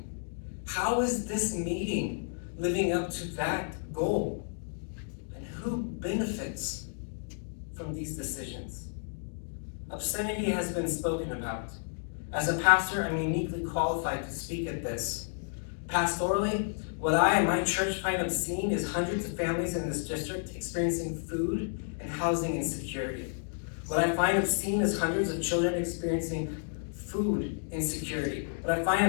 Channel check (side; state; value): right; silent; digital silence